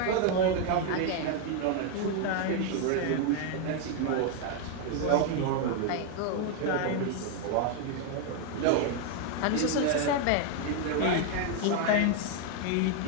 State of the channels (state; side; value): different; both; correlation 0.00